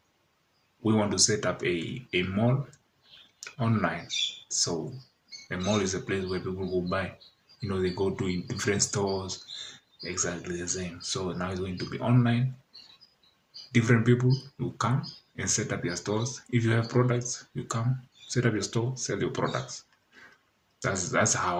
we want to set up a mall online. So a mall is a place where people go buy. They go to different stores, exactly the same. So now it's going to be online. Different people will come and set up your stores. If you have products, you come, set up your store, sell your products. That's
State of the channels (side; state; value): both; identical; correlation 1.00